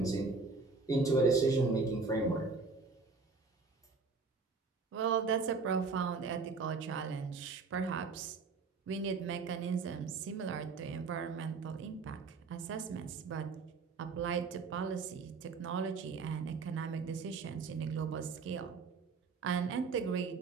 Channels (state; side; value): quieter; left; 4.4 dB